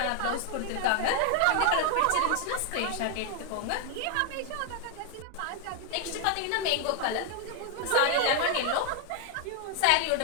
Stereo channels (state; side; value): different; both; correlation 0.01